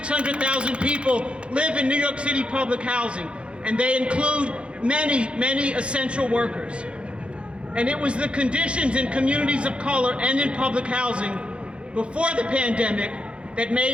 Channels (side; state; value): left; late; 0.059 ms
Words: people live in New York City public housing, and they include many essential workers. And it was the conditions in communities of color and in public housing before the pandemic that